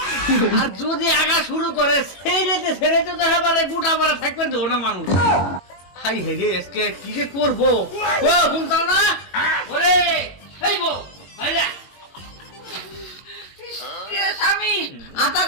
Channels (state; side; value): late; right; 22 ms